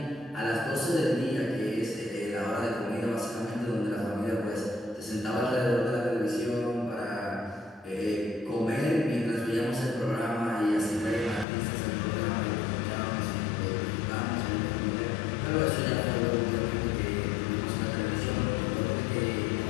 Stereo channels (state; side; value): drops out; right; at 11.5 s